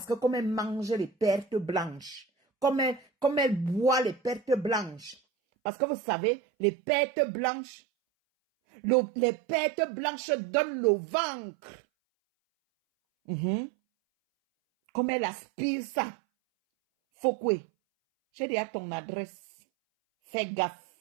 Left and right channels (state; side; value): drops out; left; at 5.2 s